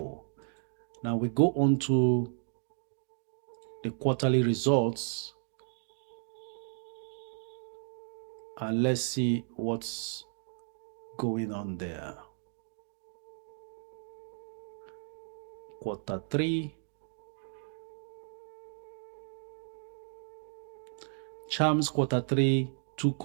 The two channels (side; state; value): left; silent; digital silence